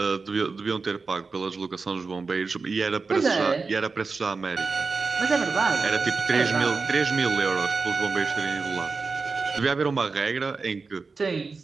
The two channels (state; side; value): quieter; left; 4.4 dB